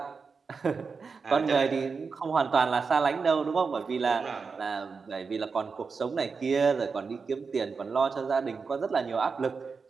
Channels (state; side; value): quieter; left; 5.0 dB